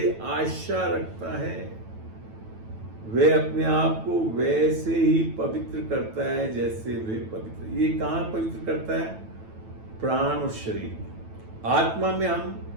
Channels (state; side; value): late; left; 9.1 ms